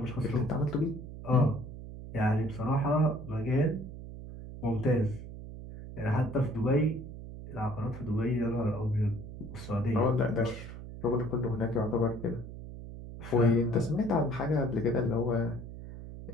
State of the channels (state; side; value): noise; right; hum, 11 dB below the sound